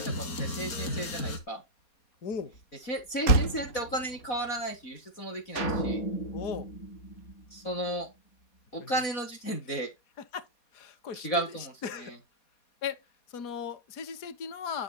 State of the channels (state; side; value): late; right; 4.2 ms